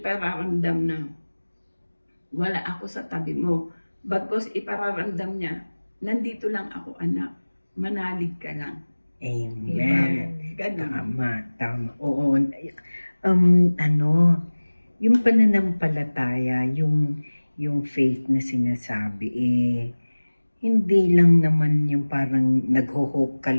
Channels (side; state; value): both; inverted; correlation -1.00